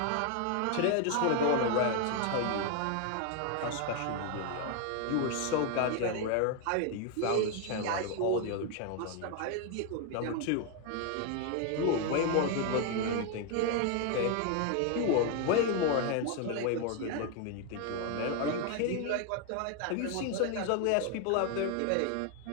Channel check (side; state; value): both; different; correlation 0.01